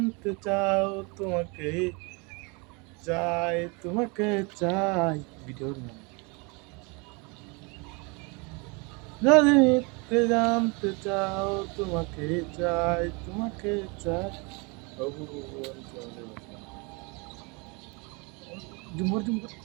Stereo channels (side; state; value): left; quieter; 30.2 dB